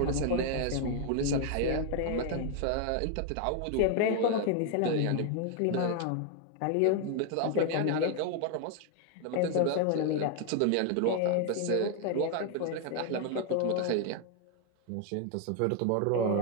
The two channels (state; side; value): different; both; correlation 0.01